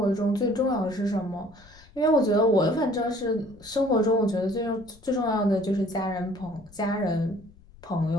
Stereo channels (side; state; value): left; noise; rumble, 25 dB below the sound